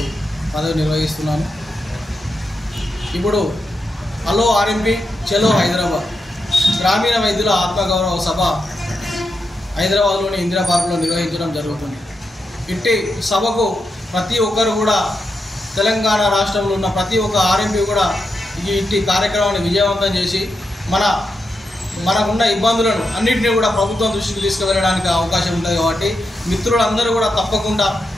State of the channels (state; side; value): normal; both; correlation 0.86